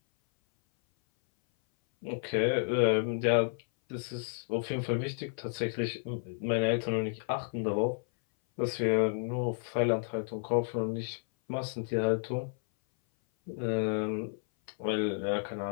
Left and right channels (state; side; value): silent; right; 57 dB below the other